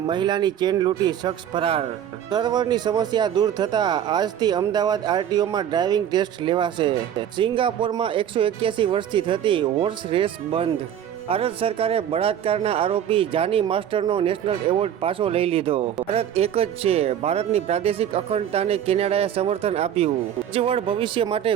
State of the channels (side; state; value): left; quieter; 9.8 dB